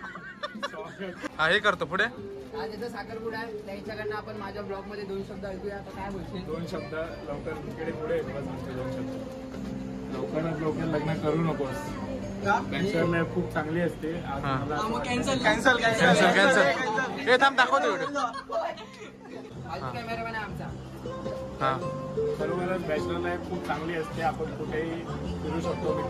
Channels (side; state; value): both; identical; correlation 1.00